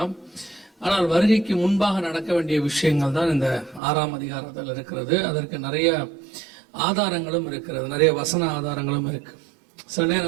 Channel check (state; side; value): drops out; left; at 3.8 s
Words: ஆனால் வருகைக்கு முன்பாக நடக்க வேண்டிய விஷயங்கள் தான் இந்த 6ஆம் அதிகாரத்தில் இருக்கிறது. அதற்கு நிறைய ஆதாரங்களும் இருக்கிறது, நிறைய வசன ஆதாரங்களும் இருக்கு. சில